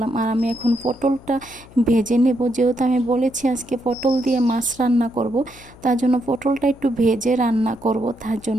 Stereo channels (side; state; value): left; noise; hum, 22 dB below the sound